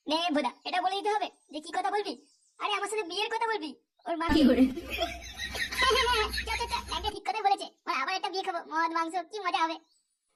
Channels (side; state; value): both; identical; correlation 1.00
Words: নে ভোদা, এটা বলে দিতে হবে যে কি কথা বলবি? আরে আমার সাথে বিয়ের কথা বলবি, ওর মা কি করে। একটা ঠিক কথা বলেছে, ওর আবার একটা বিয়ে খাবো, মদ মাংস, কি মজা হবে।